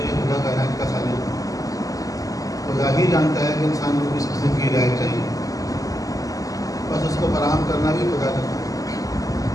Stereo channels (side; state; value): right; late; 0.17 ms